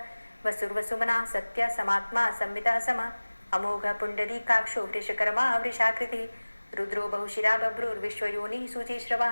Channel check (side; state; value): both; inverted; correlation -1.00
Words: वसुर्वसुमनः सत्यः समात्मा संवितः समः अमोघः पुण्डरीकाक्षो वृषकर्मा वृषाकृतिः रुद्रो बहुशिरा बभ्रुर्विश्वयोनिः शुचिश्रवः